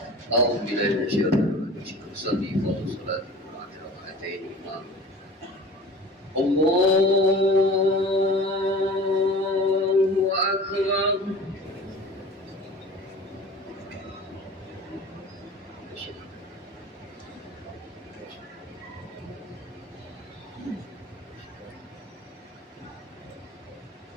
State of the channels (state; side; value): normal; both; correlation 0.40